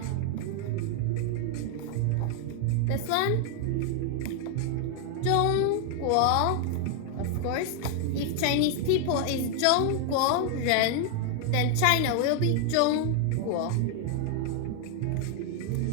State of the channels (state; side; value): different; both; correlation 0.00